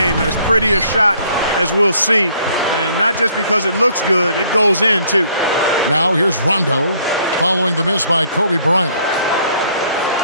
As pretty a shot as we'll see. And not just because it looks good, it goes in, too. Now here's Rondo, following the miss by Kobe Bryant.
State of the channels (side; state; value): both; inverted; correlation -0.62